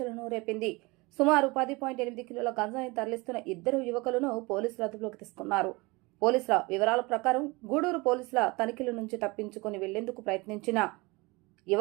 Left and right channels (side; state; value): left; quieter; 24.6 dB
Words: రేపింది. సుమారు 10.8 కిలోల గంజాయి తరలిస్తున్న ఇద్దరు యువకులను పోలీసులు అదుపులోకి తీసుకున్నారు. పోలీసుల వివరాల ప్రకారం గూడూరు పోలీసుల తనిఖీల నుంచి తప్పించుకుని వెళ్లేందుకు ప్రయత్నించిన